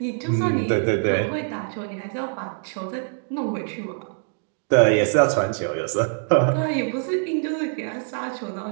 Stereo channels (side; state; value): left; silent; 63 dB below the other